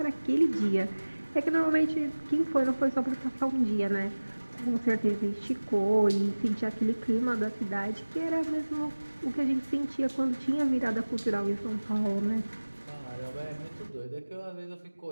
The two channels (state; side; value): inverted; both; correlation -1.00